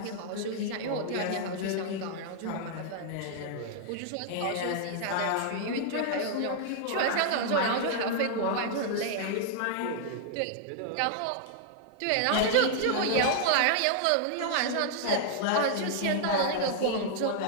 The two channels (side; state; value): both; different; correlation -0.01